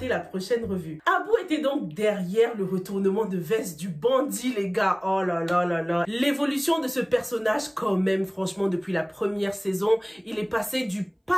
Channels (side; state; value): both; identical; correlation 1.00